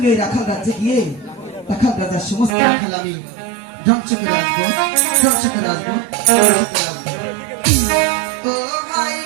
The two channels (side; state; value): left; drops out; at 2.6 s